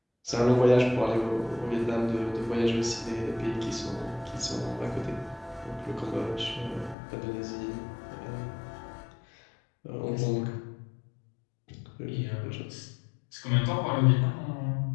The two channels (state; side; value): drops out; right; at 7.0 s